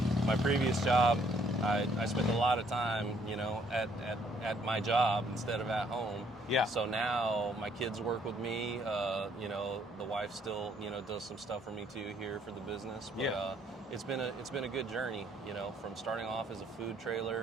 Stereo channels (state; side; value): normal; both; correlation 0.65